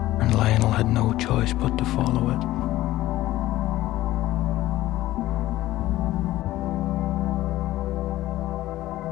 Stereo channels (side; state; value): right; quieter; 15.8 dB